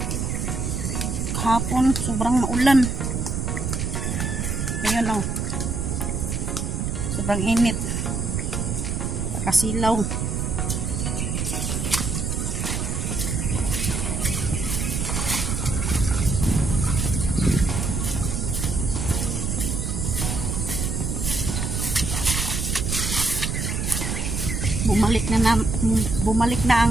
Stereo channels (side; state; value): right; noise; rumble, 1 dB below the sound